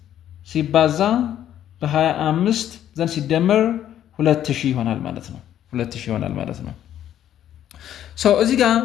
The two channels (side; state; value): right; quieter; 11.0 dB